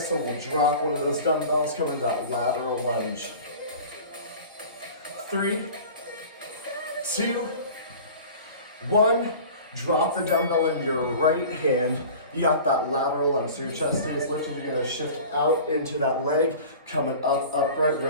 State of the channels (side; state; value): both; inverted; correlation -0.40